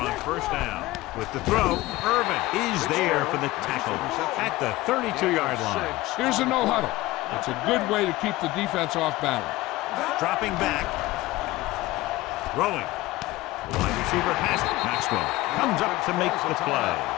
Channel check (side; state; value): right; quieter; 18.4 dB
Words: first down. With the throw, Irvin is there for the tackle at the 32-yard line. Here's a no-huddle. It's a good way to keep the defense off balance. Dropping back. Throwing. The wide receiver has it. Maxwell comes up to make the play.